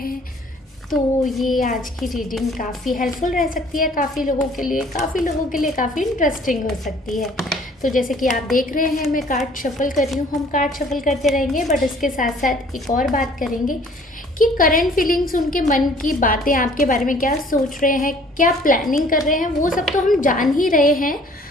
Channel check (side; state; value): both; normal; correlation 0.55